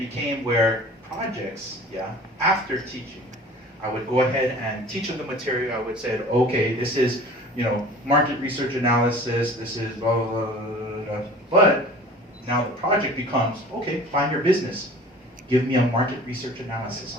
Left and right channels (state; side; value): normal; both; correlation 0.44